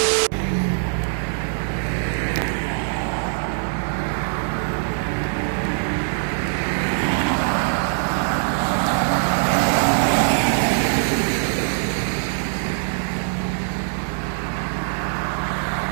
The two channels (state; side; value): silent; left; digital silence